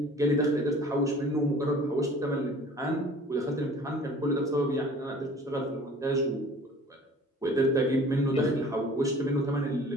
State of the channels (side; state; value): both; normal; correlation 0.47